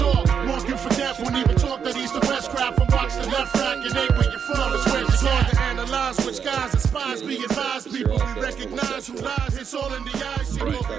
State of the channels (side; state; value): left; quieter; 7.2 dB